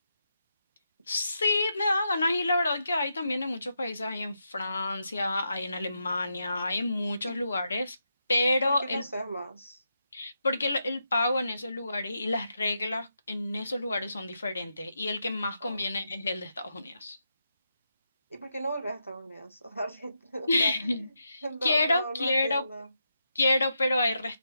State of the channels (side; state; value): both; inverted; correlation -0.84